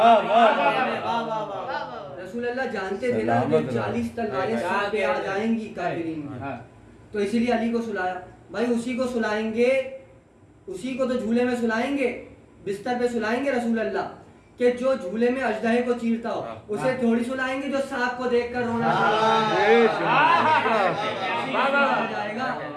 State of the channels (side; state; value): both; identical; correlation 1.00